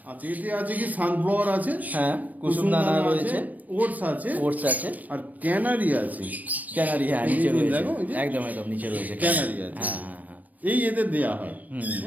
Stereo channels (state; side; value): late; left; 0.078 ms